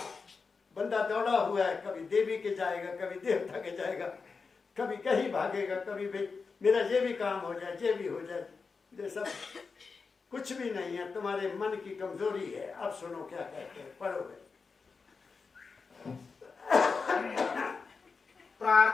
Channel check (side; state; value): right; quieter; 4.8 dB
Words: बंदा दौड़ा हुआ है, कभी देवी के जाएगा, कभी देवता के जाएगा, कभी कहीं भागेगा, कभी भाई मेरा ये भी काम हो जाए, ये भी हो जाए। ये सब कुछ भी नहीं है, तुम्हारे मन की कमजोरी है। अब सुनो क्या कहते हैं, पढ़ोगे।